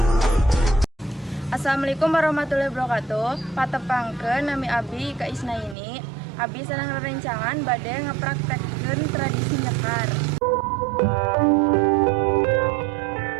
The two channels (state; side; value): drops out; left; at 5.8 s